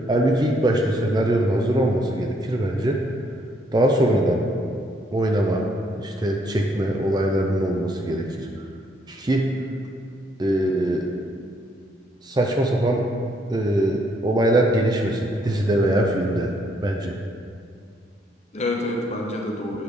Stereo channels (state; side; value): normal; both; correlation 0.70